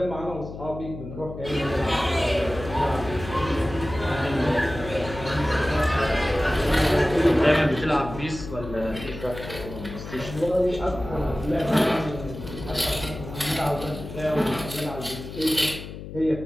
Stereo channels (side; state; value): left; noise; hum, 11 dB below the sound